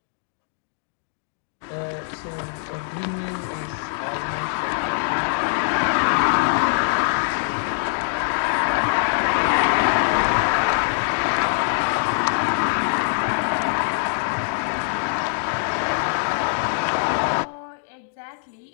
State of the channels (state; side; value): silent; right; digital silence